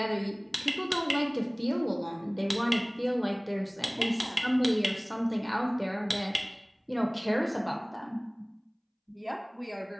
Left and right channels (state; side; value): identical; both; correlation 1.00